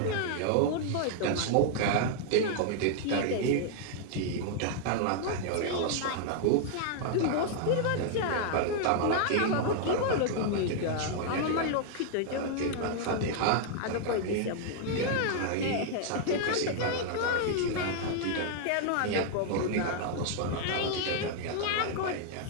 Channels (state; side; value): different; both; correlation -0.01